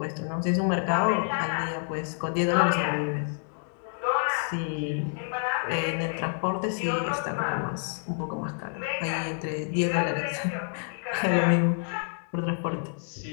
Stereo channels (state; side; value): silent; right; 59 dB below the other